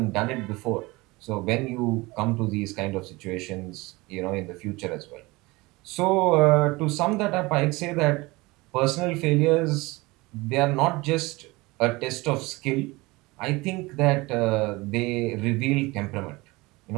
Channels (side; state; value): left; quieter; 22.7 dB